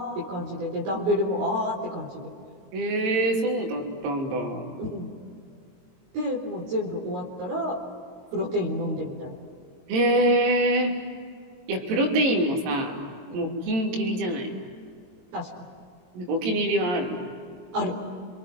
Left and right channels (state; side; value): late; left; 22 ms